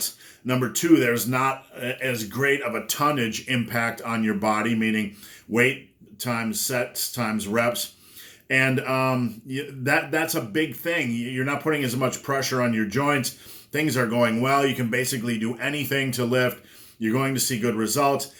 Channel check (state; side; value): identical; both; correlation 1.00